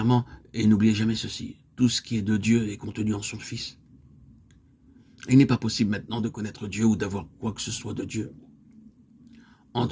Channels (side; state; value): both; identical; correlation 1.00